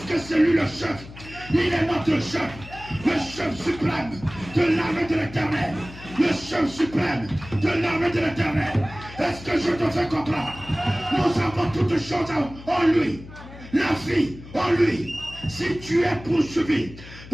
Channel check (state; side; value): noise; left; hum, 16 dB below the sound